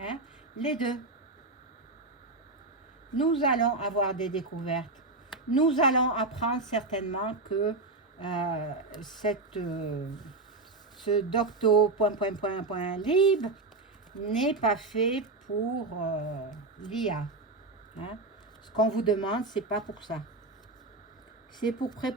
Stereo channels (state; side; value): quieter; left; 3.2 dB